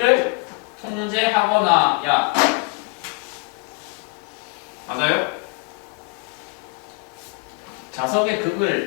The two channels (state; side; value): quieter; right; 29.8 dB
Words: 통제하거나 야 맞아요? 자석의